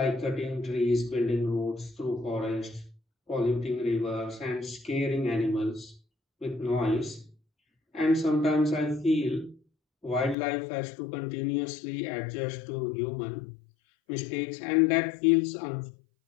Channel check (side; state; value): right; drops out; at 10.4 s